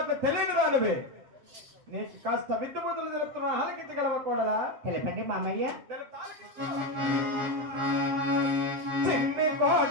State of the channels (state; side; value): late; left; 7.5 ms